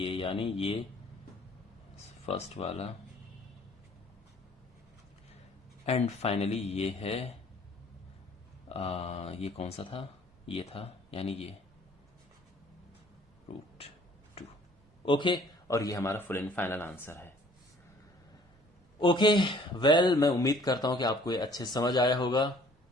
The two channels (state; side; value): normal; both; correlation 0.55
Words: यानी ये फर्स्ट वाला। एंड फाइनली ये है ये कौन सा था, ये था, यानी ये √2। ओके, और ये हमारा फुल एंड फाइनल आंसर है। ओके, वेल मैं उम्मीद करता हूं कि आपको ये अच्छे समझ आया होगा।